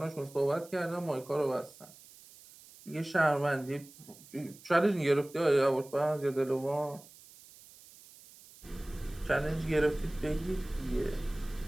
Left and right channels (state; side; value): noise; right; hiss, 22 dB below the sound